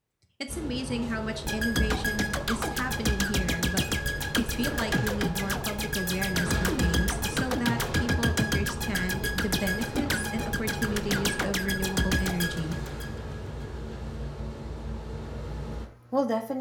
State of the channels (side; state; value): both; identical; correlation 1.00